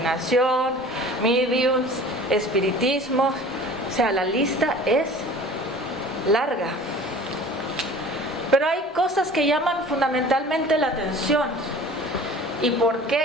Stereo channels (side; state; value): both; normal; correlation 0.44